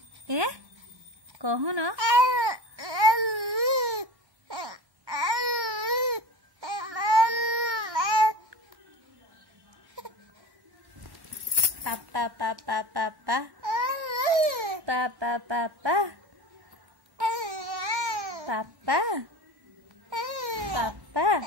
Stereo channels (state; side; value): late; left; 1.1 ms